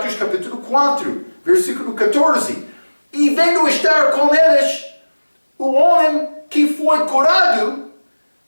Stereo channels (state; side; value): inverted; both; correlation -1.00